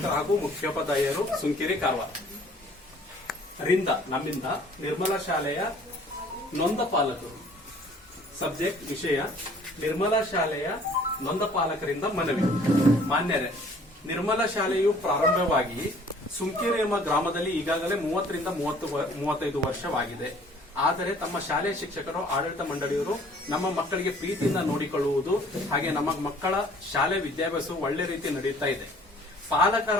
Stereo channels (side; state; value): both; normal; correlation 0.55